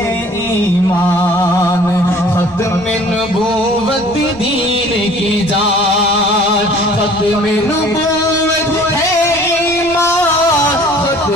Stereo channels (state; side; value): noise; right; rumble, 22 dB below the sound